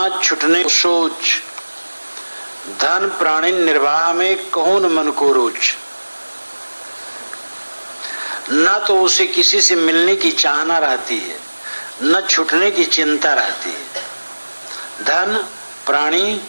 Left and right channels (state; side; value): inverted; both; correlation -1.00